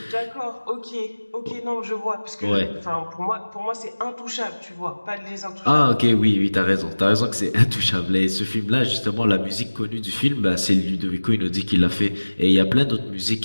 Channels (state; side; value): inverted; both; correlation -1.00